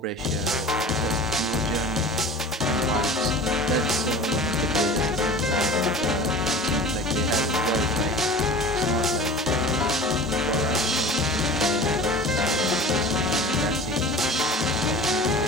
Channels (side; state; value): both; normal; correlation 0.38